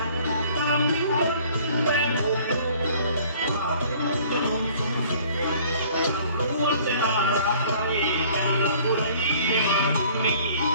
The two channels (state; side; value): inverted; both; correlation -0.54